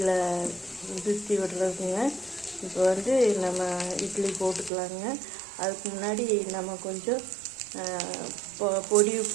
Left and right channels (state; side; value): drops out; left; at 4.7 s